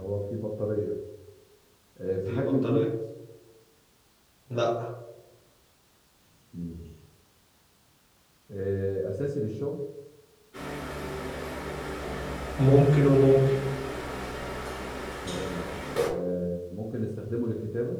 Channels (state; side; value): identical; both; correlation 1.00